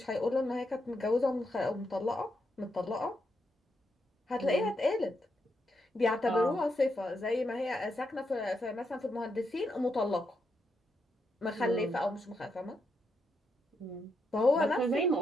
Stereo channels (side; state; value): both; normal; correlation 0.81